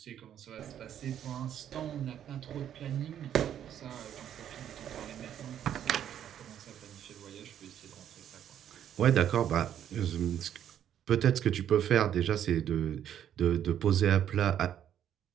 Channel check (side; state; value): left; quieter; 10.0 dB